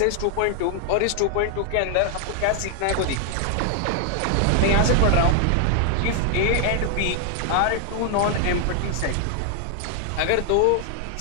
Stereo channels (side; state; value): both; different; correlation 0.00